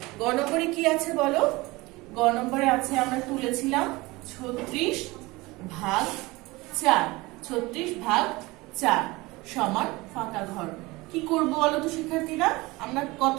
গ নম্বরে কি আছে বলো? গ নম্বরে আছে, আমরা তুলেছিলাম ৩৬ ভাগ ৪। ৩৬ ভাগ ৪ সমান ফাঁকা ঘর। কি করবো বলো তো শিক্ষার্থীরা? আমরা কত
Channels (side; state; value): left; quieter; 22.0 dB